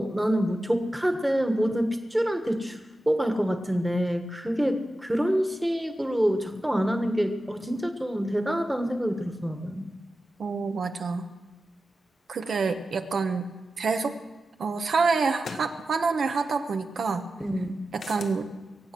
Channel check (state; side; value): normal; both; correlation 0.93